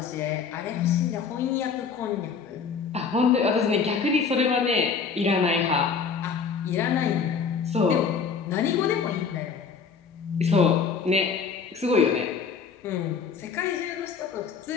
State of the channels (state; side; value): quieter; right; 5.8 dB